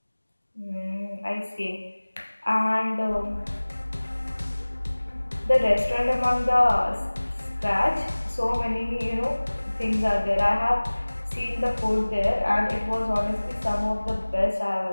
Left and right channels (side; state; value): both; inverted; correlation -1.00